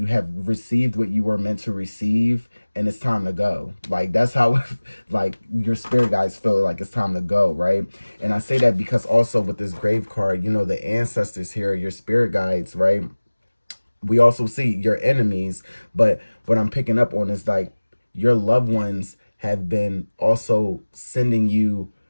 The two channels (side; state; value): both; inverted; correlation -1.00